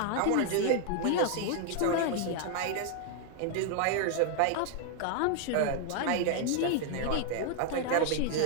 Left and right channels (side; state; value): both; different; correlation 0.00